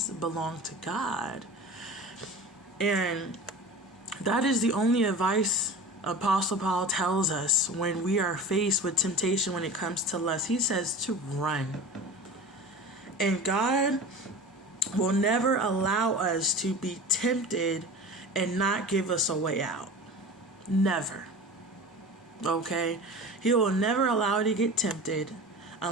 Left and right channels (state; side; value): normal; both; correlation 0.35